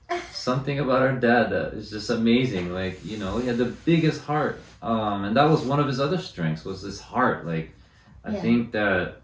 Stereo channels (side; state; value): both; identical; correlation 1.00